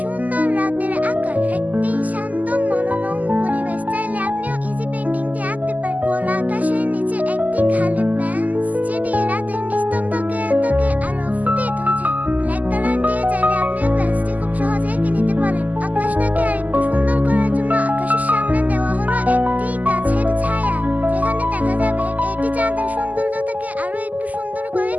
সুন্দর রাতের আকাশ। একটি শান্ত মনোরম পরিবেশ চাইলে আপনিও ইজি পেইন্টিংটি আঁকতে পারেন। খোলা আকাশের নিচে একটি খালি বেঞ্চ যেটি রাতের নিস্তব্ধকে আলো ফুটিয়ে তুলছে। ব্ল্যাক কালার দিয়ে চাইলে আপনিও বেঞ্চটি খুব সহজে এঁকে নিতে পারেন। আকাশটাকে আরেকটু সুন্দর করার জন্য আকাশের সামনে দেওয়া হলো একটি গাছের ছায়া, যেখানে দেখা যাবে এটি চাঁদের সৌন্দর্যটাকে আরো একটু সুন্দর করে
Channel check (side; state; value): left; late; 0.078 ms